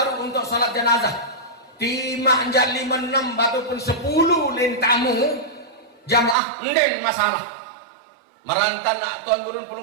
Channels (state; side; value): drops out; left; at 6.4 s